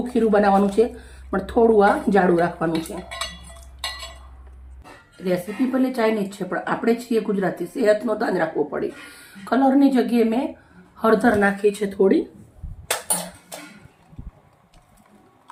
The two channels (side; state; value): both; identical; correlation 1.00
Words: ખીરું બનાવવાનું છે, પણ થોડું આ જાડું રાખવાનું છે. રેસીપી ભલે ચાઇનીઝ છે પણ આપણે છીએ ગુજરાતી, સેહતનું ધ્યાન રાખવું પડે. કલરની જગ્યાએ મેં હળદર નાખી છે થોડી.